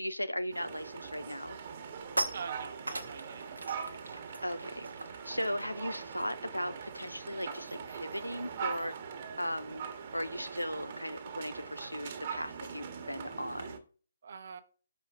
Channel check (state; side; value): inverted; both; correlation -0.88